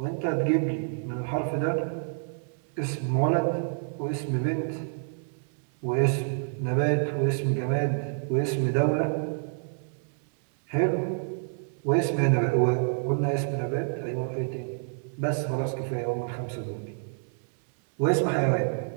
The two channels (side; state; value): left; silent; 59 dB below the other